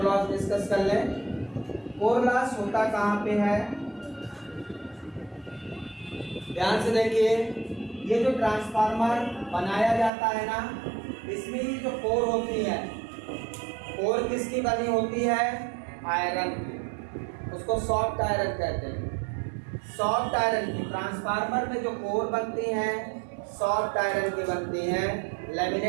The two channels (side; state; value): left; drops out; at 10.1 s